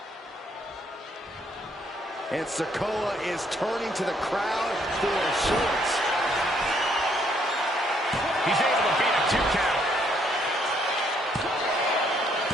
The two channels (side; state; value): both; normal; correlation 0.69